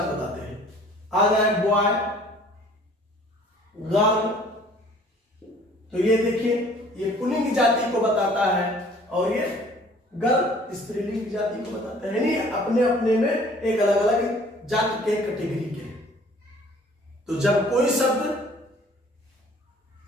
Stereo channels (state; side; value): normal; both; correlation 0.53